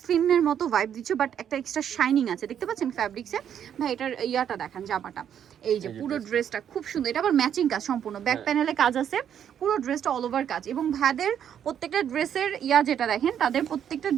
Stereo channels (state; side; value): quieter; left; 9.2 dB